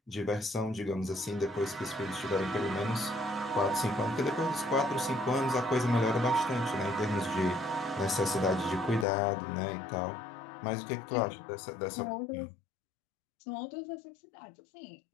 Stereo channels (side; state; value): right; drops out; at 9.1 s